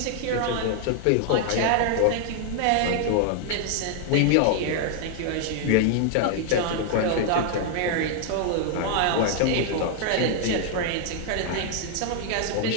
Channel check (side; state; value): both; different; correlation 0.00